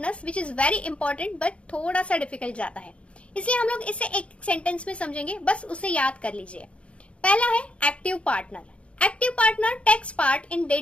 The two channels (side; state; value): right; late; 0.061 ms